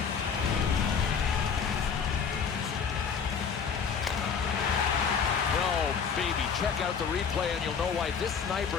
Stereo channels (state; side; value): quieter; right; 6.4 dB